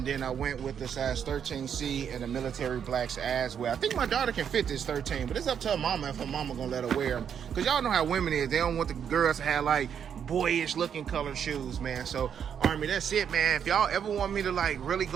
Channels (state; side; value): quieter; left; 8.1 dB